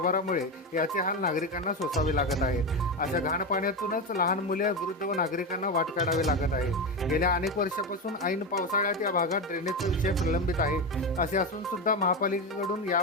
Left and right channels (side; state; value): both; normal; correlation 0.16